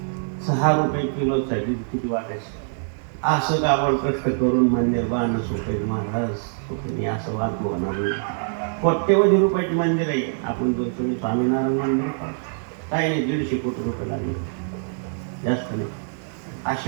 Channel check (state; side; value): silent; left; 63 dB below the other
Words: 6 रुपये किलोसाठी किती वाटायचं. असं काबड कष्ट करून मंदिर बांधणं सोपे महाराज सोपे असं वाद होणार नाही. कोट्यवधी रुपयाचे मंदिर आहे. आपण जो तुम्ही स्वामीनारायण मंदिर पाहा, काही नाही 150 कोटी रुपये लागले, जास्त नाही.